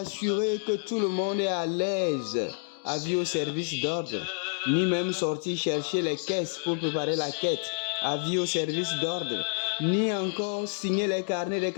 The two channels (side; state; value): right; silent; digital silence